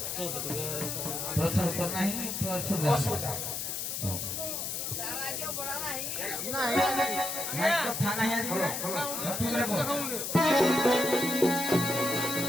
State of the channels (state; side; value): noise; left; hiss, 3 dB below the sound